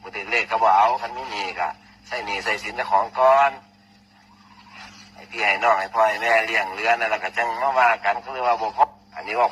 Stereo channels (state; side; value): identical; both; correlation 1.00